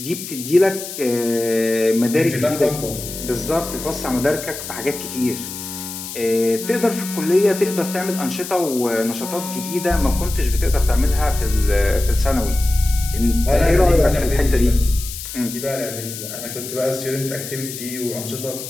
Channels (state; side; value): noise; left; hiss, 9 dB below the sound